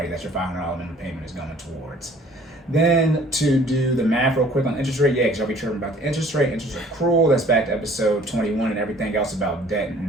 That's your $500 minimum payment is going towards. Then to do the math real quick on interest rate, because y'all be tripping about the interest rate, interest accrual, that's back to episode 21 and everything else about debt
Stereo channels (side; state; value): both; normal; correlation 0.54